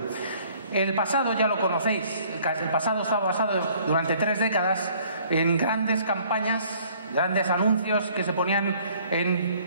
El pasado ya lo conocéis. El pasado estaba basado durante 3 décadas en grandes campañas, grandes anuncios que se ponían en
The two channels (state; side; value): inverted; both; correlation -0.58